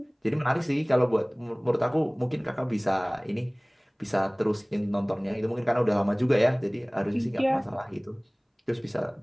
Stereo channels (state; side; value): identical; both; correlation 1.00